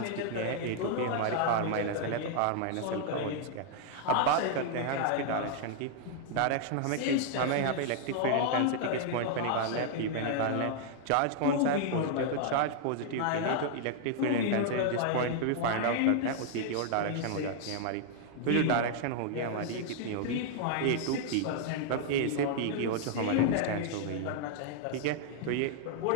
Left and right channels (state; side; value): different; both; correlation -0.01